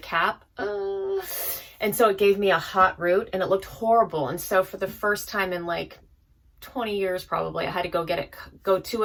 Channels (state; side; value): identical; both; correlation 1.00